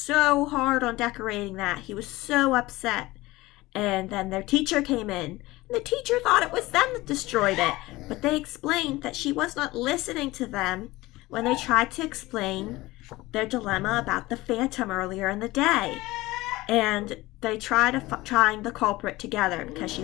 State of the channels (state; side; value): quieter; right; 19.4 dB